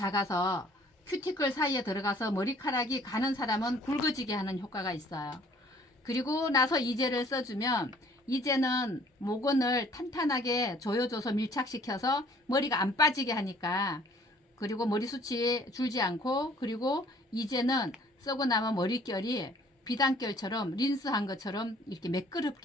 큐티클 사이에 들어가서 머리카락이 가는 사람은 굵어지게 하는 효과가 있어요. 그리고 나서 이제를 써주면 이제는 모근을 탄탄하게 조여줘서 밀착시켜서 머리가 안 빠지게 하니까, 그리고 머리숱이 줄지 않고, 그리고 이제는 쓰고 나면 머릿결이 비단결처럼 린스한 것처럼 이렇게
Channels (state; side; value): normal; both; correlation 0.57